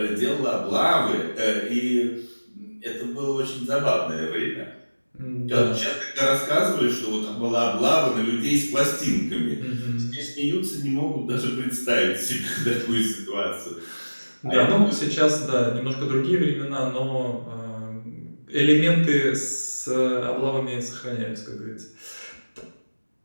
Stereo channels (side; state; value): both; inverted; correlation -1.00